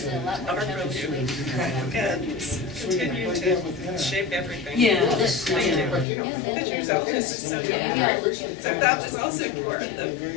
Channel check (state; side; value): drops out; right; at 6.1 s